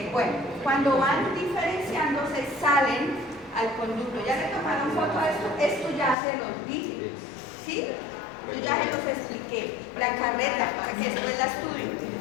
bueno, cuando van diferenciándose salen al conducto. ¿Ya le tomaron foto a esto? Esto ya se los di, ¿sí? Yo ya se los expliqué. La carreta, para que después la estudien.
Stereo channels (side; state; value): right; drops out; at 6.2 s